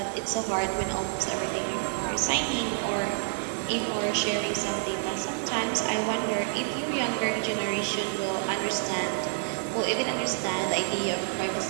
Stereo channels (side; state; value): left; silent; 59 dB below the other